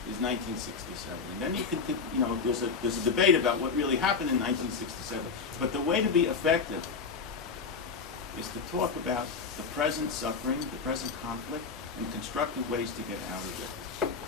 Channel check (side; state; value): right; quieter; 5.2 dB